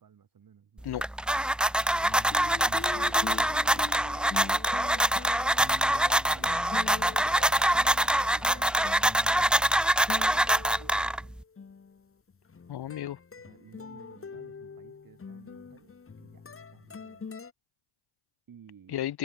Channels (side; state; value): both; normal; correlation 0.67